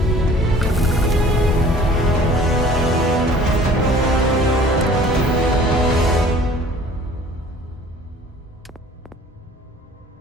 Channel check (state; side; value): normal; both; correlation 0.50